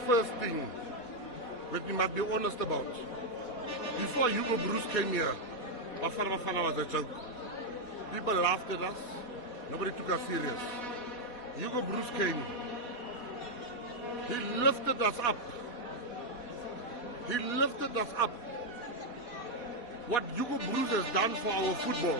first thing that we must be honest about, before Hugo Broos came here, Bafana was a joke. People laughed at us. Nobody took us serious. Hugo Broos came. He lifted us up. He lifted us up. What Hugo Broos has done for our football,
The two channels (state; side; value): late; right; 4.1 ms